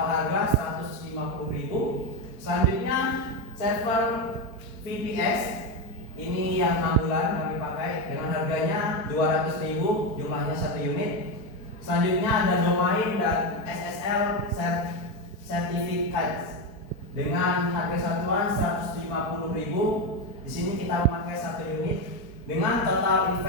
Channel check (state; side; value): late; right; 4.4 ms